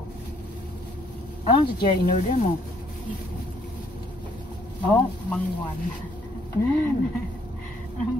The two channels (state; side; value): normal; both; correlation 0.66